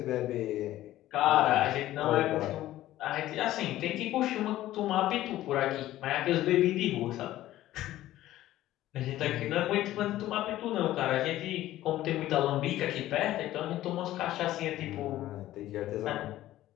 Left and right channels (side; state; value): right; quieter; 14.5 dB